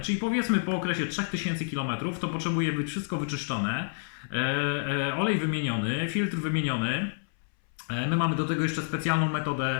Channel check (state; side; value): silent; right; 59 dB below the other